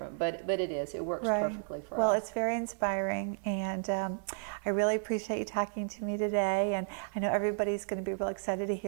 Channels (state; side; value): silent; left; 56 dB below the other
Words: but it is. It works perfectly for us. Well, it's very inspiring, and I really appreciate you talking to me today. And I know everybody's going to be real excited to